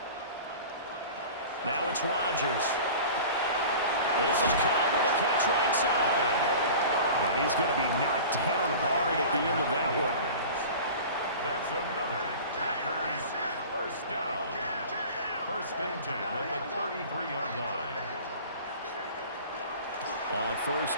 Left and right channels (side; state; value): both; inverted; correlation -0.38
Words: Now it's Rodgers. This is Cobb with a catch right side. And he's going to be knocked down hard at the end of that one. That's another Packers first down. 1st and 10 at the 33-yard line. On